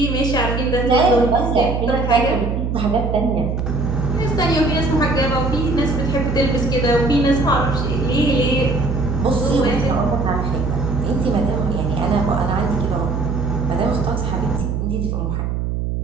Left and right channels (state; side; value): noise; right; hum, 1 dB below the sound